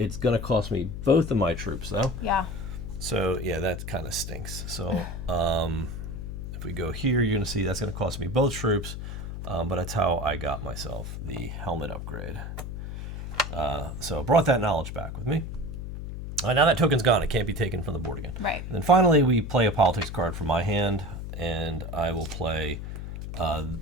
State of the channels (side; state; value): left; noise; hum, 7 dB below the sound